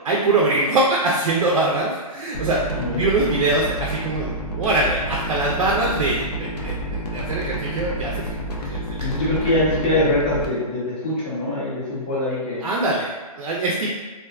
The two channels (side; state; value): both; normal; correlation -0.12